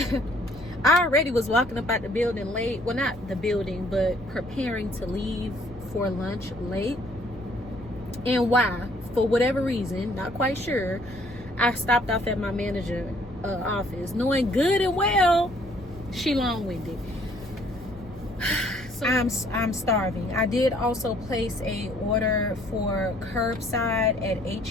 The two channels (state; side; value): normal; both; correlation 0.62